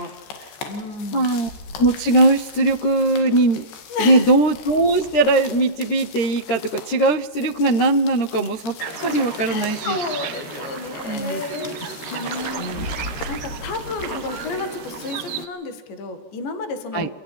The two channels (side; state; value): right; late; 14 ms